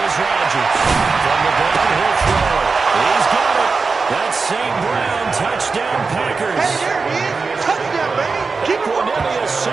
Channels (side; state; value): left; quieter; 4.5 dB